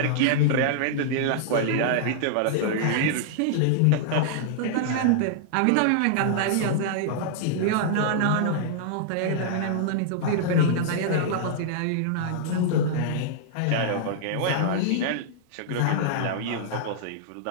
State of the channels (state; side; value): different; both; correlation -0.01